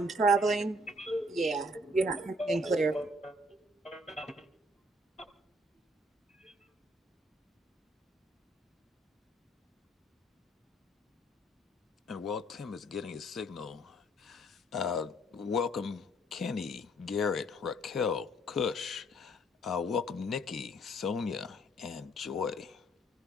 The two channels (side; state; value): both; normal; correlation 0.63